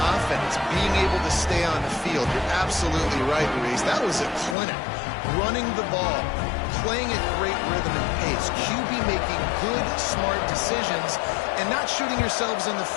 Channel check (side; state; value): right; drops out; at 4.5 s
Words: offense. Being able to stay on the field. You're absolutely right, Reese. That was a clinic. Running the ball, playing at great rhythm and pace. QB making good, smart decisions and not shooting yourselves in the